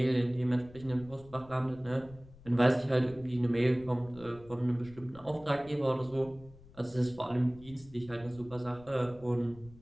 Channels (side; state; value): left; noise; rumble, 21 dB below the sound